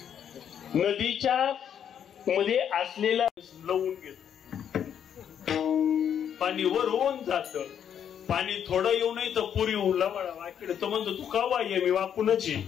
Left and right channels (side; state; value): right; quieter; 8.8 dB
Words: नदीच्या मध्ये असलेला लवून घेतो, पाणी वरून जात. पाणी थोडं येऊ नये तर पुरी लवळा वाकडे. तो म्हणतो तू का वाय, मी वाकूनच ये.